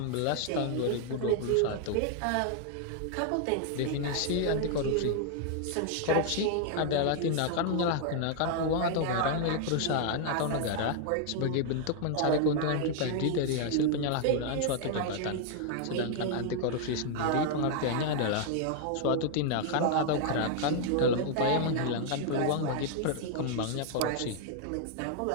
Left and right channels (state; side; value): different; both; correlation 0.00